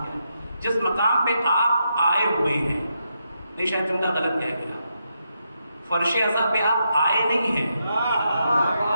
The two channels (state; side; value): inverted; both; correlation -0.83